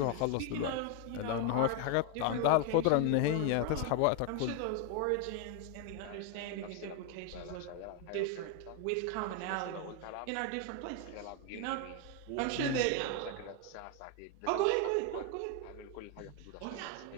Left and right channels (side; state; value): both; different; correlation 0.01